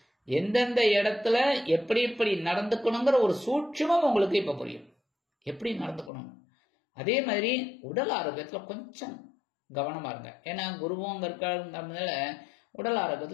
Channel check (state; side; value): drops out; right; at 6.1 s